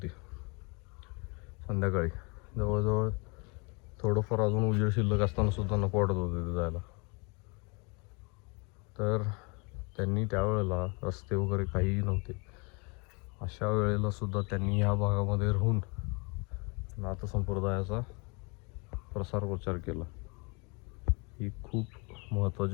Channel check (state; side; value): quieter; right; 30.5 dB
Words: संध्याकाळी. जवळजवळ थोडंफार अजून उजेड शिल्लक असताना सुद्धा नको वाटत होतं तिथं जायला. तर त्यांनी त्यावेळेला रस्ते वगैरे काहीही नव्हते, अशा वेळेला सुद्धा त्यांनी ह्या भागामध्ये राहून नाथ संप्रदायाचा प्रसार प्रचार केला. ही खूप